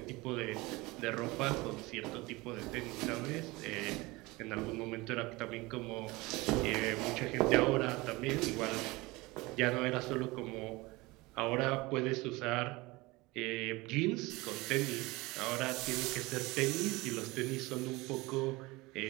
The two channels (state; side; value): quieter; left; 22.4 dB